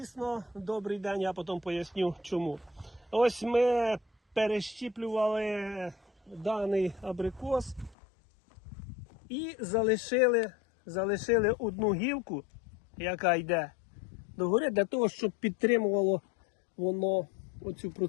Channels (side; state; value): right; drops out; at 8.0 s